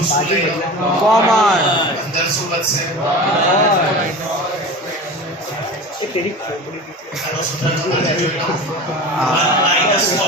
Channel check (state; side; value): normal; both; correlation 0.33